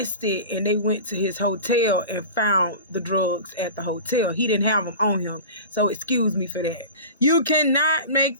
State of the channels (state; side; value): inverted; both; correlation -0.34